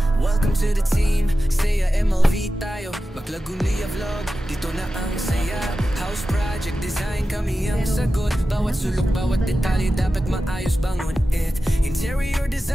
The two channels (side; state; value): both; normal; correlation 0.93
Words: welcome to the team. Saya MLV tayo, Maklagunia vlog. Dito na ang saya. House project design, kami ang sagot. Bawat sulok, bawat detalye dapat maayos bangon it. Interior